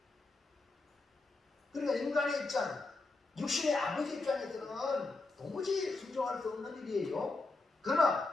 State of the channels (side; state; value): right; quieter; 3.4 dB